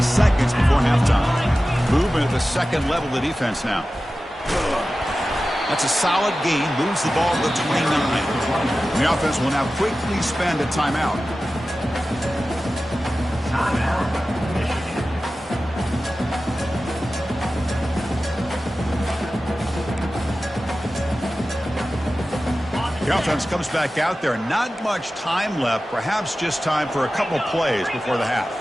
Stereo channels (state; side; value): normal; both; correlation 0.95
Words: seconds before halftime. Movement at the second level of the defense now. That's a solid gain. Moves the ball to the 29. And the offense will now quickly spend a timeout. The offense comes back out there. Not much time left. Perhaps just time for a couple plays before the half.